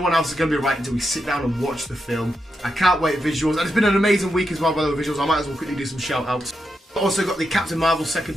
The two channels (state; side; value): normal; both; correlation 0.85